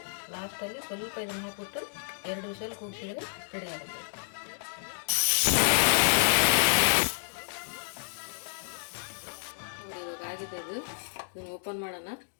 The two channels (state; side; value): silent; right; digital silence